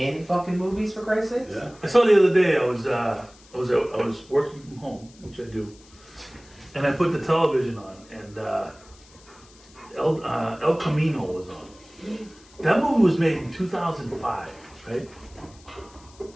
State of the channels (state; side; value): noise; left; hiss, 26 dB below the sound